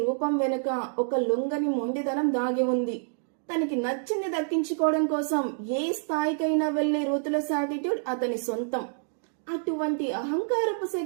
రూపం వెనుక ఒక లొంగని మొండితనం దాగి ఉంది. తనకి నచ్చింది దక్కించుకోవడం కోసం ఏ స్థాయికైనా వెళ్లే రూత్లెస్ యాటిట్యూడ్ అతని సొంతం. అటువంటి అహంకారపు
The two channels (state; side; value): silent; left; digital silence